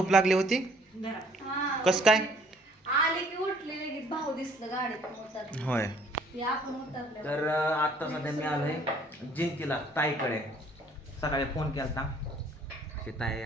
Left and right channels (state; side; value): normal; both; correlation 0.59